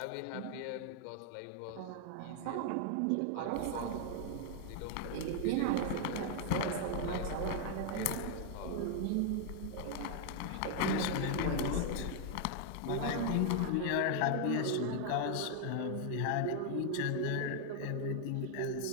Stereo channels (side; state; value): both; different; correlation 0.00